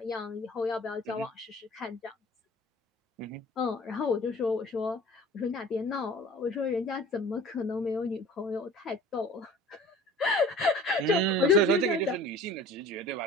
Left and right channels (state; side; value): normal; both; correlation 0.44